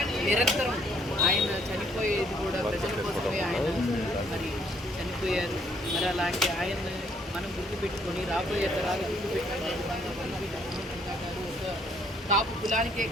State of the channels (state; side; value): normal; both; correlation 0.67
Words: నిరంతరం ఆయన చనిపోయేది కూడా ప్రజల కోసమే. ఆయన మరి చనిపోయారు. మరి అలాంటి ఆయన మనం గుర్తుపెట్టుకొని రాబోయే తరాలు గుర్తుపెట్టుకునే విధంగా వంగవీటి మోహన్ రంగా గారు ఒక కాపు కులానికే